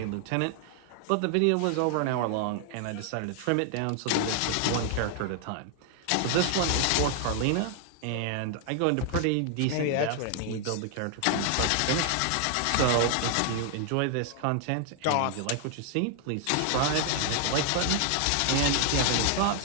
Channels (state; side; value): different; both; correlation 0.00